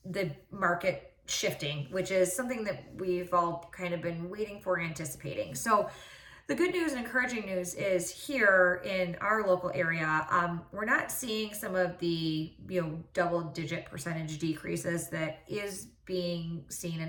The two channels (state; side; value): identical; both; correlation 1.00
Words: the market shifting, which is something that we've all kind of been waiting for, anticipating. So the good news and encouraging news is here in our local area, we're not seeing some of the double-digit percentage decreases that is being seen